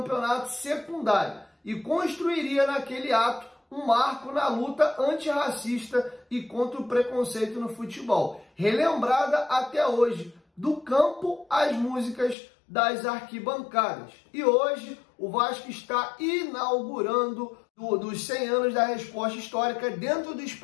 secundário, e construiria naquele ato um marco na luta antirracista e contra o preconceito no futebol, relembrada até hoje, do campo às músicas das arquibancadas. E hoje o Vasco está inaugurando dos 100 anos da Resposta Histórica dentro do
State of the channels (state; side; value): drops out; right; at 12.4 s